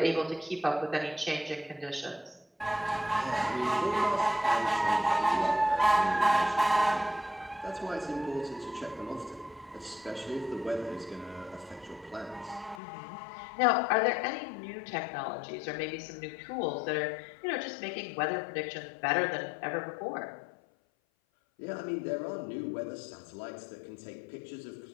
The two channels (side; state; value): right; drops out; at 12.8 s